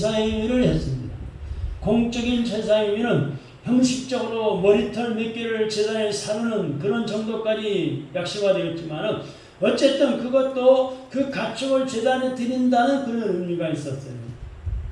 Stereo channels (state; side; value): identical; both; correlation 1.00